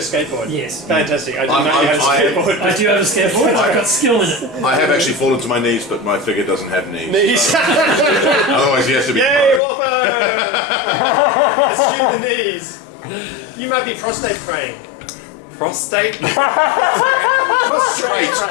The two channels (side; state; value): right; drops out; at 9.6 s